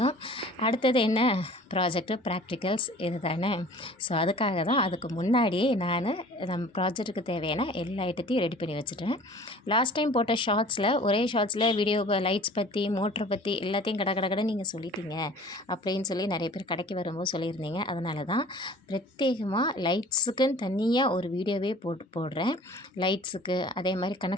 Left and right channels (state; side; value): normal; both; correlation 0.47